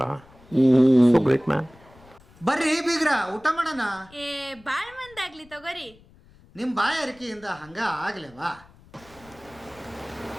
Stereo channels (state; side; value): noise; left; rumble, 26 dB below the sound